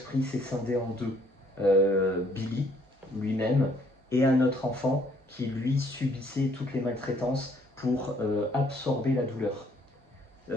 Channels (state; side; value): normal; both; correlation 0.64